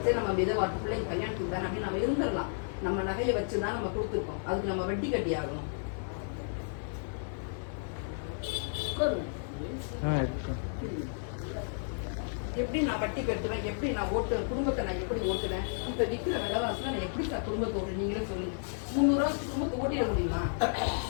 சரி, நம்ம விதவாட்டு பிள்ளைங்க கல்யாணத்துக்கு தானே அப்படின்னு நம்ம இருந்துடலாம். நம்ம நகையை வச்சுதான் நம்ம கொடுத்துருக்கோம், அதுக்கு நம்ம வட்டி கட்டி ஆகணும். எப்படி நான் வட்டி கட்டுவேன்? எப்படி நான் குடும்பத்தை நான் எப்படி ஓட்டுவேன்? இப்ப விற்கிற விலைவாசல நான் எப்படி சார் குடும்பத்தை ஓட்டு? நீங்களே சொல்லுங்க. 300 ரூபா குடும்பத்தை ஓட்டிட முடியுமா?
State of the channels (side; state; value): right; silent; digital silence